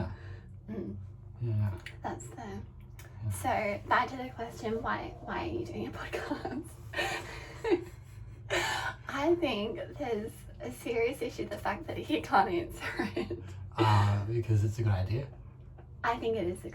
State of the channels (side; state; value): both; identical; correlation 1.00